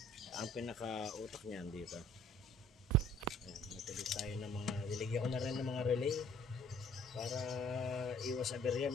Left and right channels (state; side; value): normal; both; correlation 0.56